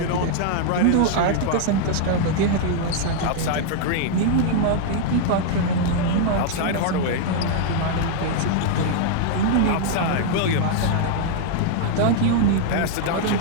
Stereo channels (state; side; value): different; both; correlation 0.00